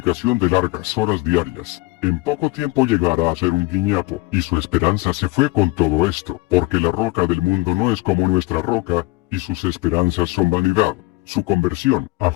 de largas horas diarias, en poco tiempo llegara a ser un guiñapo, y su esperanza se fue con todo esto, porque la roca del mundo no es como nuestra roca, y sus esperanzas son vanidad. Su conversión: a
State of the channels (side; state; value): right; quieter; 21.5 dB